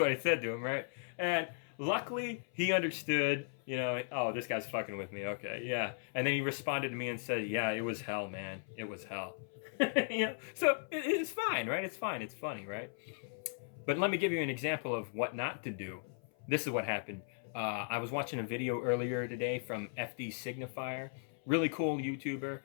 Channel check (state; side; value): silent; right; 53 dB below the other